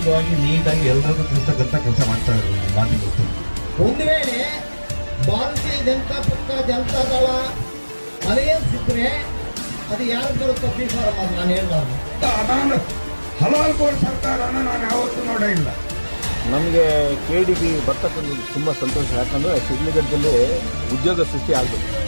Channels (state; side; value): inverted; both; correlation -1.00